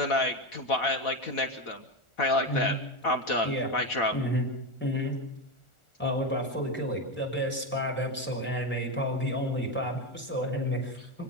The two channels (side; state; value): right; late; 1.4 ms